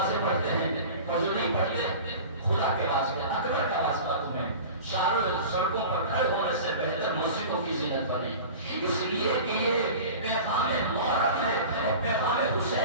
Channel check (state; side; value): inverted; both; correlation -0.37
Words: پڑھتے ہیں اور جو نہیں پڑھتے خدا کے واسطے اکبر کا واسطہ تمہیں چاروں سڑکوں پر کھڑے ہونے سے بہتر مسجدوں کی زینت بنے اس لیے کہ یہ پیغام محرم ہے اور پیغام